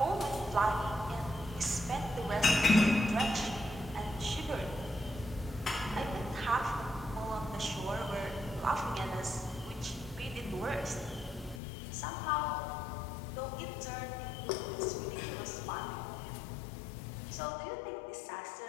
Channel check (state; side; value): drops out; right; at 11.6 s